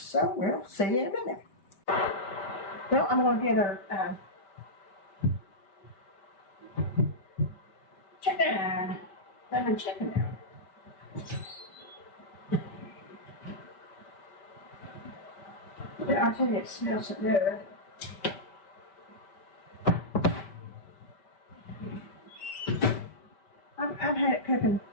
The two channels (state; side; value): late; right; 5.1 ms